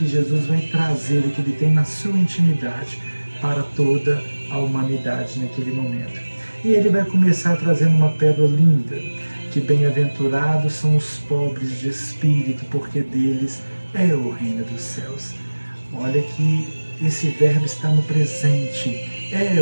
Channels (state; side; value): inverted; both; correlation -1.00